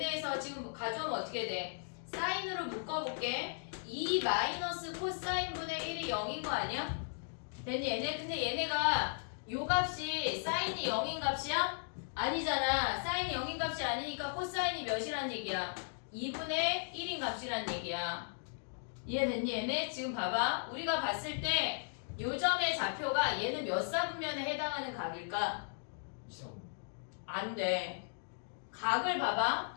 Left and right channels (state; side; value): silent; right; digital silence